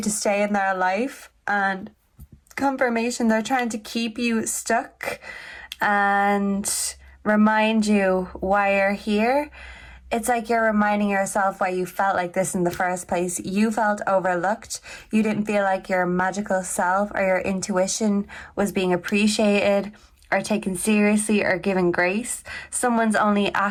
to stay in their life, and confirmation, they're trying to keep you stuck and remind you why you're here. It's like you're reminding yourself why you felt like this in the first place. You felt overlooked. You didn't feel like your magical self or your intuition was being appreciated or taken seriously or given grace. Someone's only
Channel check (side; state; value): both; identical; correlation 1.00